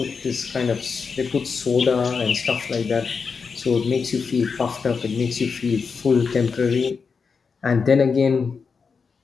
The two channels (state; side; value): quieter; right; 5.4 dB